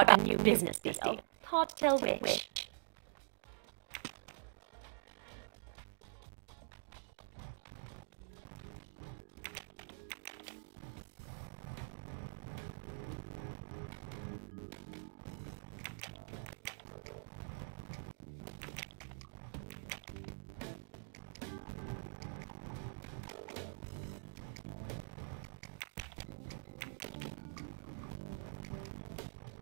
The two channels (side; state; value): left; silent; digital silence